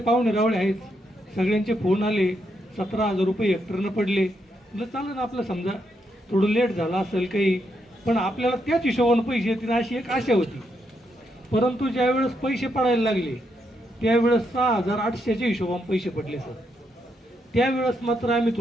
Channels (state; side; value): normal; both; correlation 0.79